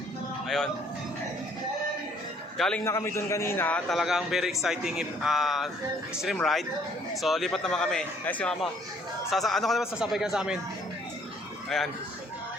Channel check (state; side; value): normal; both; correlation 0.62